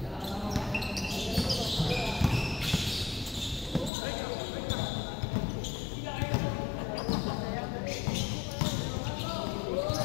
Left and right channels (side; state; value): right; drops out; at 3.9 s